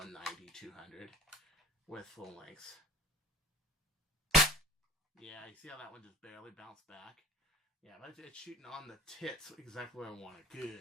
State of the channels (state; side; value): normal; both; correlation 0.43